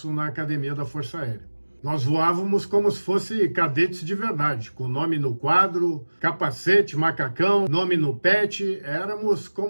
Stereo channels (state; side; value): inverted; both; correlation -1.00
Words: na Academia da Força Aérea. Nós voávamos como se fosse cadetes de verdade, com nome no quadro, capacete, macacão, nome no pet, éramos